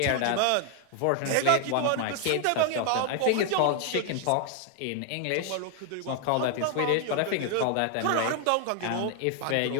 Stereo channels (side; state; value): both; different; correlation 0.00